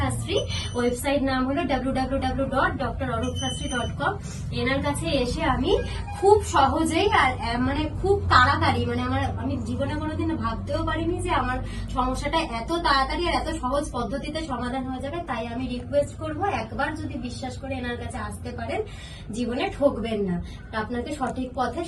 ওয়েবসাইট নাম হলো www.drorupshastri.com। এনার কাছে এসে আমি খুব সহজেই আর মানে খুব তাড়াতাড়ি, মানে আমি জীবনে কোনোদিন ভাবতেও পারিনি যে আমার সমস্যাটা এত তাড়াতাড়ি আর এত সহজ পদ্ধতিতে সমাধান হয়ে যাবে। তাই আমি রিকোয়েস্ট করব, একবার যদি বিশ্বাস করে এনার কাছে আসতে পারেন, জীবনে ঠকবেন না। আপনাকে সঠিক পথে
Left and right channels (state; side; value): identical; both; correlation 1.00